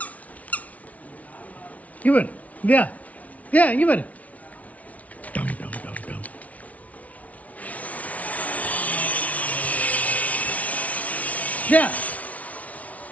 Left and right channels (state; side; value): late; right; 0.069 ms